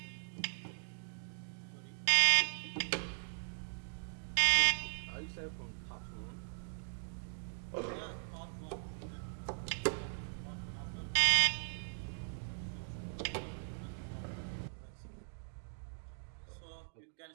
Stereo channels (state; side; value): silent; left; digital silence